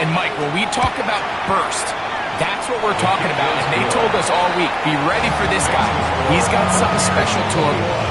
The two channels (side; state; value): both; identical; correlation 1.00